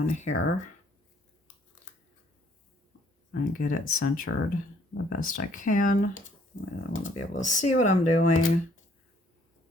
here and get it centered the best I can. I want to be able to see what I'm doing.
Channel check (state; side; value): normal; both; correlation 0.63